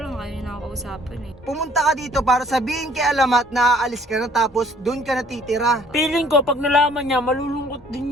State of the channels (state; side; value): normal; both; correlation 0.58